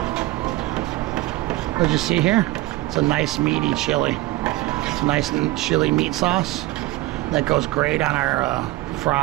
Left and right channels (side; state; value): left; quieter; 18.1 dB